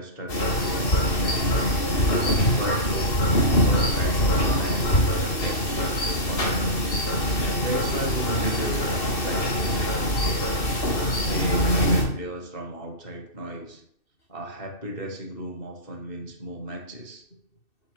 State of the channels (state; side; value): late; right; 2.6 ms